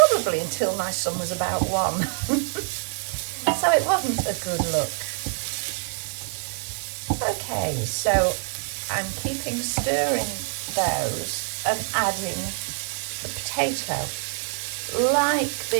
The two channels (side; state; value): left; silent; 61 dB below the other